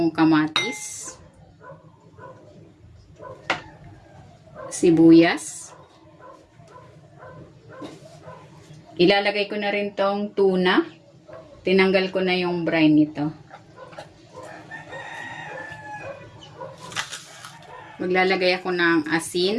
kamatis, sibuyas. Ilalagay ko na rin tong tuna. Tinanggal ko na yung brine nito. Maglalagay ako ng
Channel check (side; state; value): both; identical; correlation 1.00